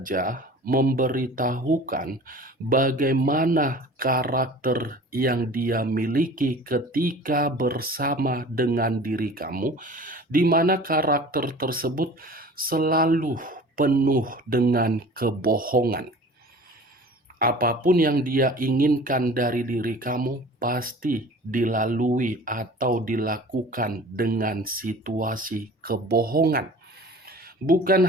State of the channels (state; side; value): normal; both; correlation 0.43